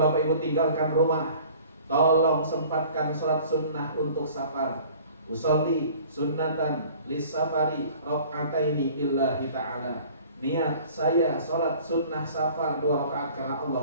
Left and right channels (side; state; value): both; inverted; correlation -0.48